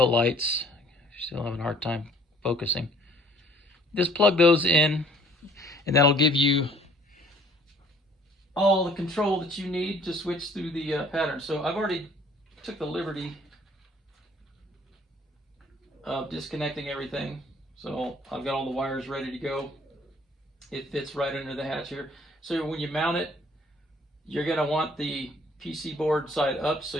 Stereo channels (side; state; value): both; normal; correlation 0.57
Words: lights. Still having a hard time focusing. Just plug those in, and that'll give you all the control that you need to switch through the pattern. So I've already took the liberty of disconnecting everything. So I've got all the wires ready to go. It fits right under the hatch here. So when you mount it, you're going to want the PC board side up so